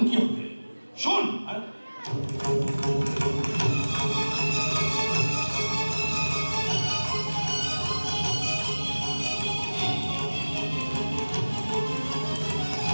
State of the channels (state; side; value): inverted; both; correlation -1.00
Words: কি হবে শোন